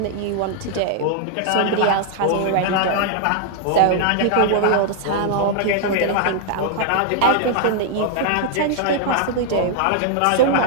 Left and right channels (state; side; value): different; both; correlation -0.01